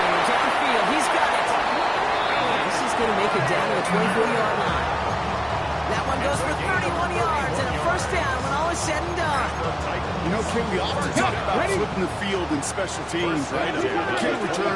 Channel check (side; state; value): both; identical; correlation 1.00